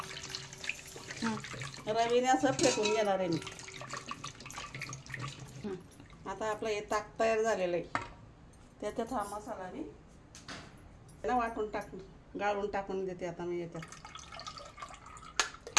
रवीने असं फेटून घेणार आहे मी। आता आपलं हे ताक तयार झालेलं आहे, त्याच्यात हा मसाला मी वाटून गाळून टाकून देते आता मी याच्यात।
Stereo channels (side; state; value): both; identical; correlation 1.00